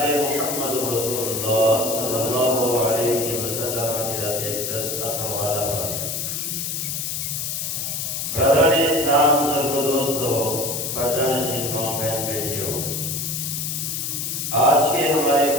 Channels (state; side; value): noise; left; hiss, 3 dB below the sound